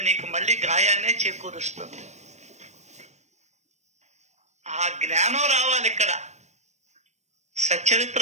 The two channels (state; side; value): late; left; 0.33 ms